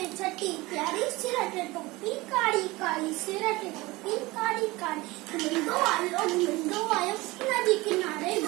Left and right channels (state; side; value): quieter; left; 21.2 dB